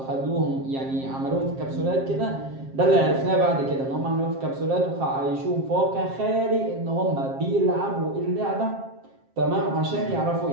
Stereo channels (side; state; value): left; late; 7.5 ms